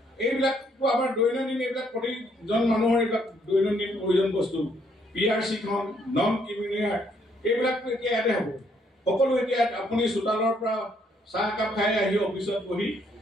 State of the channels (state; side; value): normal; both; correlation 0.70